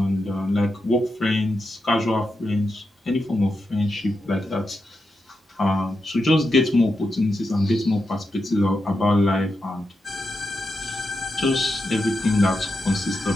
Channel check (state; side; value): normal; both; correlation 0.87